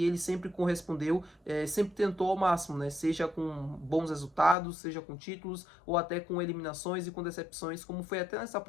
ele sempre correspondeu, sempre tentou ao máximo, né? Seja com bons resultados, seja com títulos, ou até com eliminações e com decepções, como foi até nessa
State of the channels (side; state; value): right; drops out; at 4.5 s